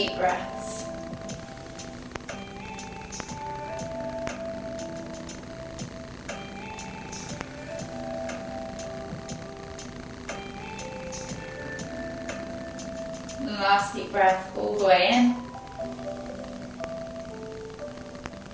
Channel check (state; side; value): identical; both; correlation 1.00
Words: breaths. Last deep breath all the way in.